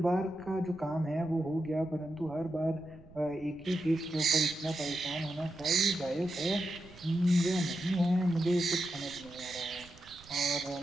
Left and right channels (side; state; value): right; noise; rumble, 22 dB below the sound